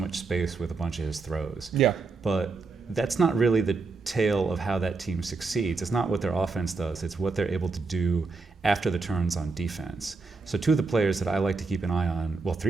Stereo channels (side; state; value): left; quieter; 4.1 dB